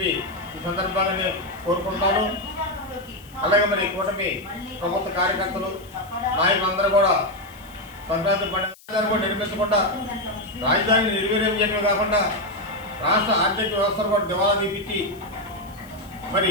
ఈ సందర్భంగా నేను కోరుకుంటున్నాను. అలాగే మరి కూటమి ప్రభుత్వ కార్యకర్తలు నాయకులందరూ కూడా సంక్రాంతి పండుగ కూడా నిర్మించకుండా రాజధానిని నిర్వీర్యం చేయడమే కాకుండా రాష్ట్ర ఆర్థిక వ్యవస్థను కూడా దివాలా తీపించి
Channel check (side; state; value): left; noise; hiss, 25 dB below the sound